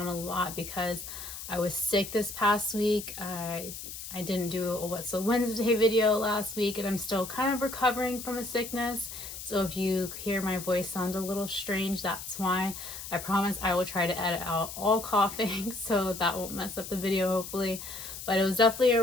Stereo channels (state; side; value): noise; left; hiss, 10 dB below the sound